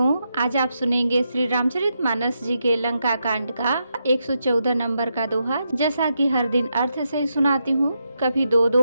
आज आप सुनेंगे श्री रामचरितमानस जी के लंका कांड का 114 नंबर का दोहा। जैसा कि हर दिन अर्थ से सुनाती हूँ, कभी 2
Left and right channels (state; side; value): inverted; both; correlation -0.83